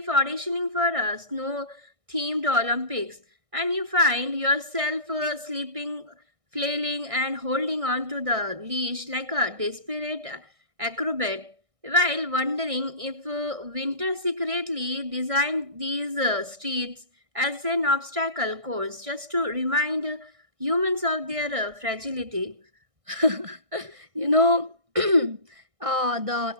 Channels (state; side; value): late; left; 1.6 ms